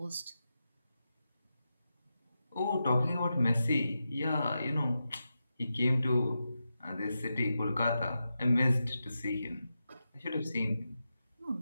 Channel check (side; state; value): both; inverted; correlation -0.89